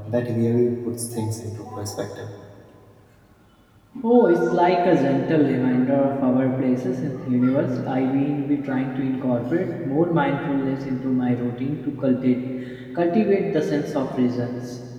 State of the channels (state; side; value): identical; both; correlation 1.00